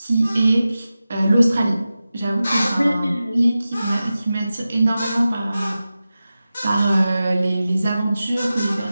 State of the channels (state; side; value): inverted; both; correlation -0.94